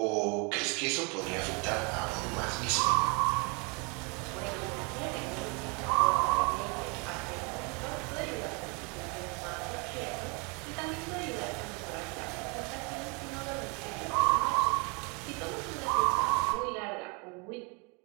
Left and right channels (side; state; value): left; quieter; 31.8 dB